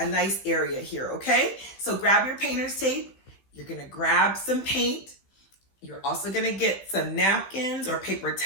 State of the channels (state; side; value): late; right; 16 ms